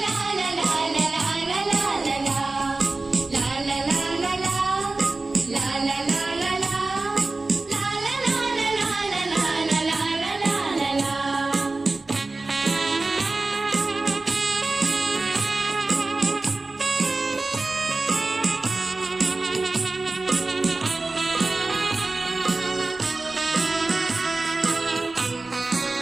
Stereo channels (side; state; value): left; quieter; 3.3 dB